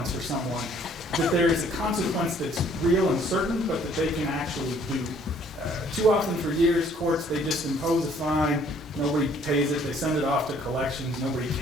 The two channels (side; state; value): both; normal; correlation 0.60